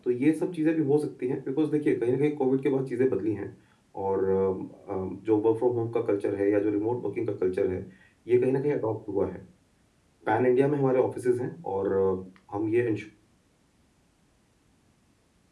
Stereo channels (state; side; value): identical; both; correlation 1.00